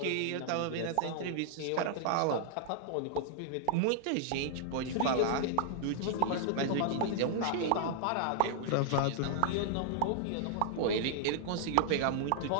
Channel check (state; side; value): different; both; correlation -0.01